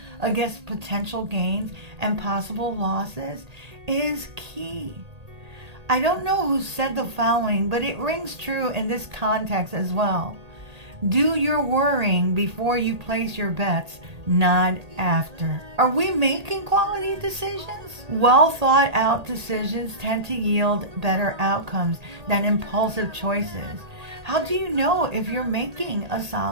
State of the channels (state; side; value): late; left; 1.8 ms